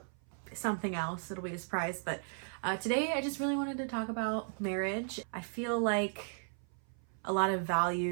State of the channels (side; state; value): left; silent; 54 dB below the other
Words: something else. It'll be a surprise, but today I just really wanted to talk about marriage. I feel like a lot of